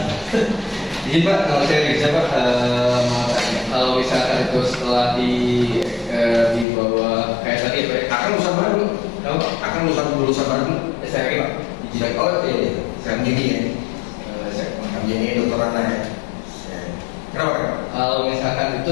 Jadi Pak, kalau saya bisa Pak, mau tanya, kalau misalkan itu setelah dibawa kayak tadi Pak, Akan lulusan baru, akan lulusan baru. saya lagi Pak, Oh iya, saya gini ya, saya ini dokter Ana ya. Kenapa? kalau misalkan itu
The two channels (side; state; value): right; drops out; at 6.7 s